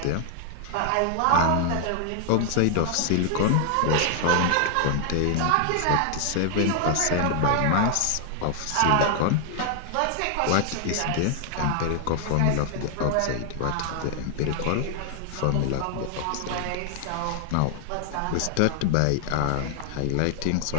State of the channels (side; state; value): both; different; correlation 0.00